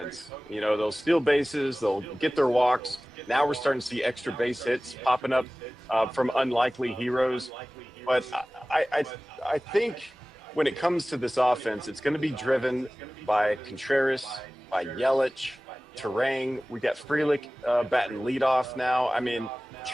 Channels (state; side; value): normal; both; correlation 0.98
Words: They'll steal bases, they'll get their walks. Now we're starting to see extra base hits popping up from unlikely heroes. But I think when it comes to this offense, it's going to be driven by Contreras, by Yelich, Terang. We got Frelick batting leadoff now. I mean,